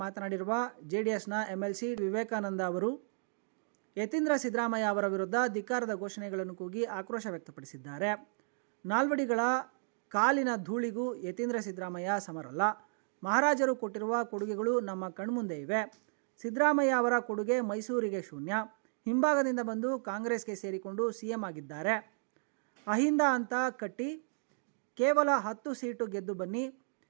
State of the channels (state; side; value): silent; left; digital silence